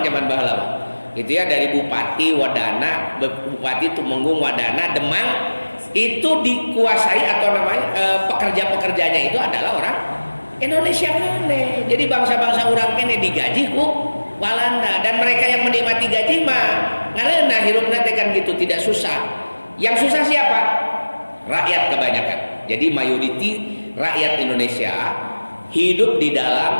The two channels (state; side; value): inverted; both; correlation -1.00